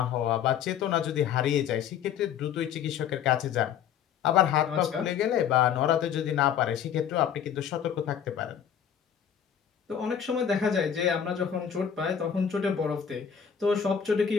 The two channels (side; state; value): right; quieter; 8.5 dB